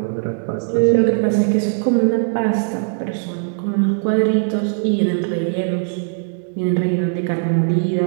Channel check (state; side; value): silent; left; digital silence